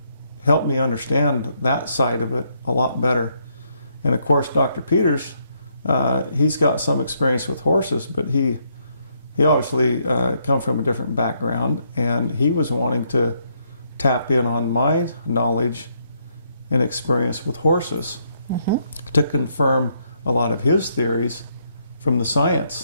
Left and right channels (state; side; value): inverted; both; correlation -0.74